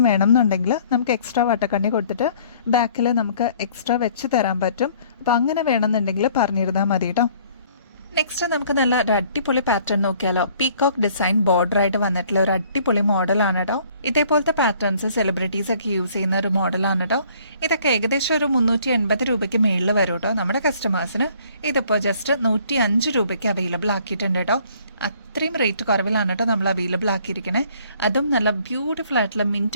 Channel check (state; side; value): inverted; both; correlation -0.58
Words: വേണം എന്നുണ്ടെങ്കിൽ നമുക്ക് എക്സ്ട്രാ വട്ടക്കണ്ണി കൊടുത്തിട്ട് ബാക്കിൽ നമുക്ക് എക്സ്ട്രാ വെച്ച് തരാൻ പറ്റും. അപ്പൊ അങ്ങനെ വേണമെന്നുണ്ടെങ്കിൽ പറഞ്ഞിരുന്നാൽ മതി കേട്ടോ. നെക്സ്റ്റ് നമുക്ക് നല്ല ഒരു അടിപൊളി പാറ്റേൺ നോക്കിയാലോ. പീകോക്ക് ഡിസൈൻ ബോർഡർ ആയിട്ട് വന്നിട്ടുള്ള ഒരു അടിപൊളി മോഡലാണ് കേട്ടോ. ഇതേപോലത്തെ പാറ്റേൺസ് സെലിബ്രിറ്റീസ് ഒക്കെ യൂസ് ചെയ്യുന്ന ഒരു മോഡലാണ് കേട്ടോ. ഇതൊക്കെ ഏകദേശം ഒരു 380 രൂപയ്ക്ക് മേളിൽ വരും കേട്ടോ. നമ്മുടെ കസ്റ്റമേഴ്സിന് ഇതിപ്പോൾ ജസ്റ്റ് 105 രൂപയ്ക്ക് അവൈലബിൾ ആക്കിയിട്ടുണ്ട് കേട്ടോ. അത്രയും റേറ്റ് കുറവിലാണ് കേട്ടോ നമ്മൾ അവൈലബിൾ ആക്കിയിരിക്കണേ. അതും നല്ല ബ്യൂട്ടിഫുൾ ആയിട്ടുള്ള